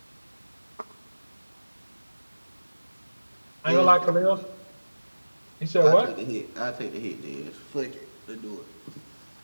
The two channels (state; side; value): inverted; both; correlation -1.00